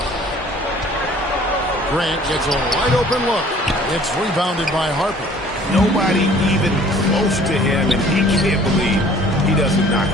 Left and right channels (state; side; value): normal; both; correlation 0.53